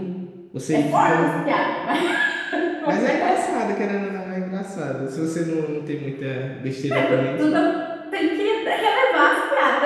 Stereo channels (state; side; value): identical; both; correlation 1.00